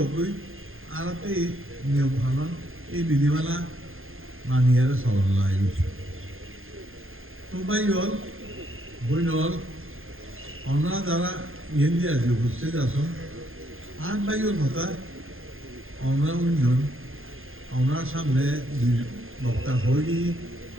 কই আর এই নিয়ম কানুন এই বিধিমালা মানিয়ে চলার লাগে। তো ভাই হল বই হল আমরা যারা ইয়েন দিয়ে আছি উপস্থিত আসুন আর ভাইয়ের কথা আমরা উন্নয়ন আমরা সামনে বক্তা হই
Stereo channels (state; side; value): late; left; 0.60 ms